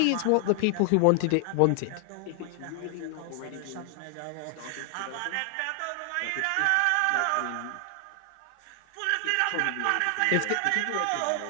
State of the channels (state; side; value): different; both; correlation 0.00